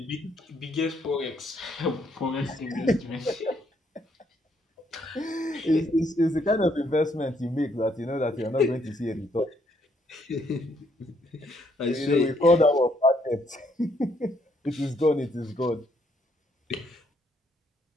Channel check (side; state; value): both; normal; correlation 0.71